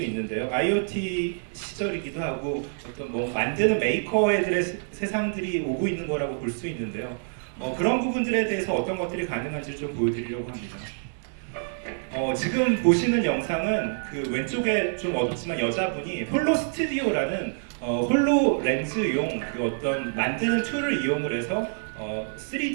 있는데요. IoT 시절이기도 하고 어떤 뭐 만드는 메이커애들의 세상들이 오고 있는 거라고 볼 수 있는데요. 그런 부분들에 대해서 어떤 것들이 가능한지 좀 보여드리려고 합니다. 지금 보시는 영상은 그 왼쪽에 좀 어둡지만 여자분이 홀로 스튜디오라는 홀로 렌즈용 그 어떤 만드는 툴을 이용을 해서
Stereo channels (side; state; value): left; silent; digital silence